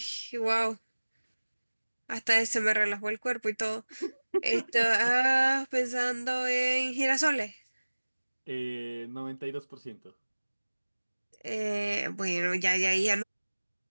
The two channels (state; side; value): inverted; both; correlation -1.00